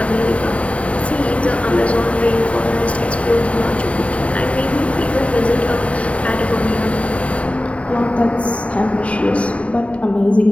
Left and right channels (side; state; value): right; late; 0.064 ms